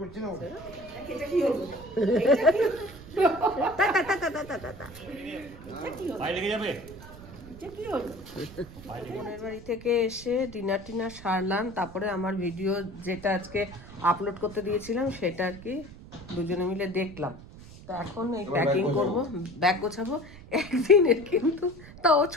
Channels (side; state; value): right; noise; rumble, 17 dB below the sound